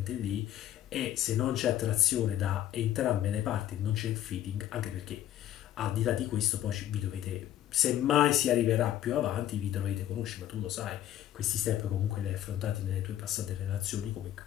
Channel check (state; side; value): quieter; right; 12.1 dB